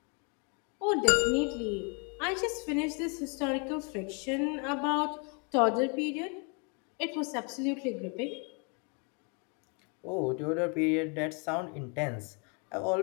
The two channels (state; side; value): quieter; right; 35.9 dB